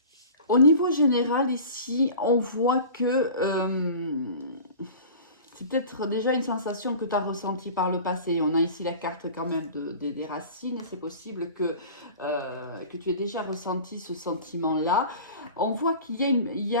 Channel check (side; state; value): both; inverted; correlation -0.40